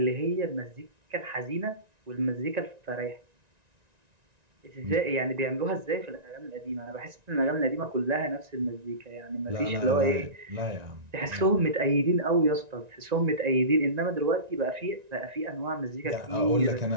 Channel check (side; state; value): left; late; 1.9 ms